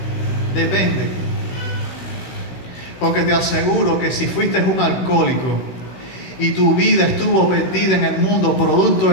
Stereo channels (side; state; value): right; late; 16 ms